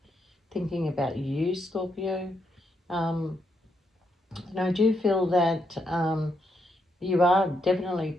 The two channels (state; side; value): normal; both; correlation 0.79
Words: thinking about you, Scorpio. And I do feel that you are definitely